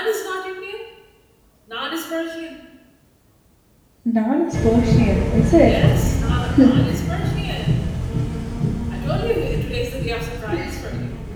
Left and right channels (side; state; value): both; identical; correlation 1.00